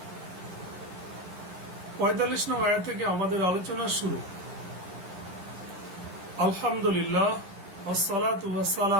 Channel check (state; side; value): late; left; 11 ms